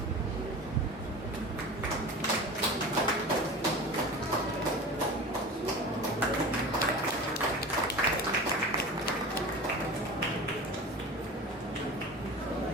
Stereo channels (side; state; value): both; normal; correlation 0.34